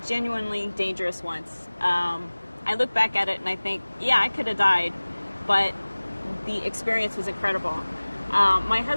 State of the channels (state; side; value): inverted; both; correlation -1.00